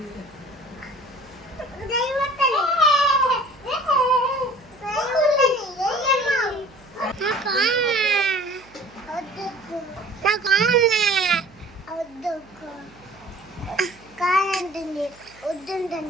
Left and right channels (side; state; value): right; noise; hum, 26 dB below the sound